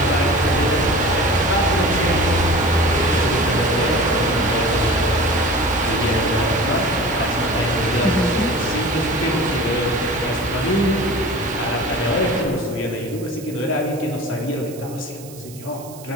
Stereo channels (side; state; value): right; noise; hiss, 19 dB below the sound